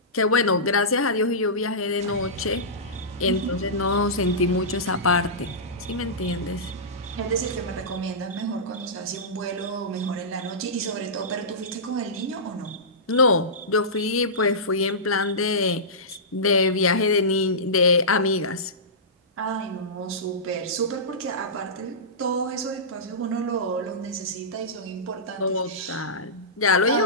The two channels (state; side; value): normal; both; correlation -0.18